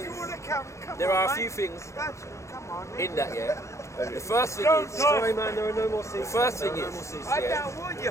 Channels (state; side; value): late; right; 0.14 ms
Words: There are a few things in that, yeah. The first thing is, Sorry, man, there are no more seats. the first thing is, yeah,